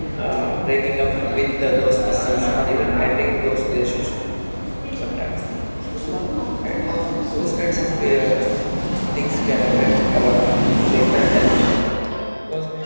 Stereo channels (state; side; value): inverted; both; correlation -1.00